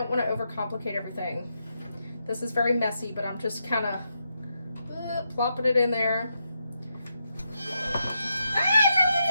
want to overcomplicate everything. This is very messy, but I'm just kind of plopping it in there.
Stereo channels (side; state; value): both; inverted; correlation -0.83